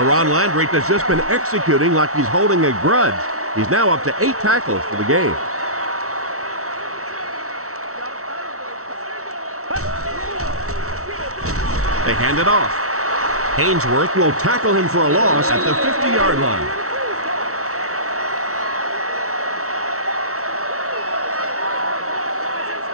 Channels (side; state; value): left; late; 0.64 ms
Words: Landry has just been executing like he's holding a grudge. He's now up to 8 tackles for the game. They hand it off. Ainsworth will tackle him for a loss at the 50-yard line.